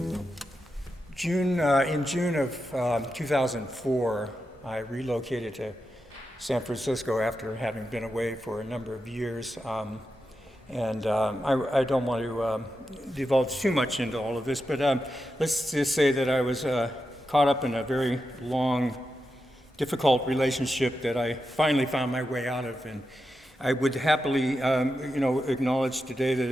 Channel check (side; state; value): both; normal; correlation 0.89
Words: June of 2004, I relocated to San Francisco after having been away for a number of years. I don't want to divulge too much into all of this, but let's just say that I was caught up in a very long, difficult relationship that I finally found my way out of. And I would happily, acknowledge today that